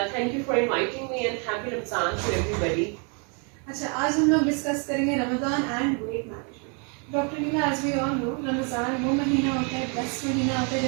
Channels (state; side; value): quieter; left; 37.1 dB